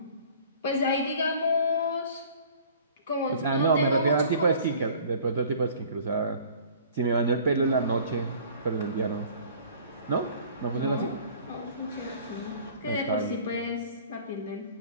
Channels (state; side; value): inverted; both; correlation -0.49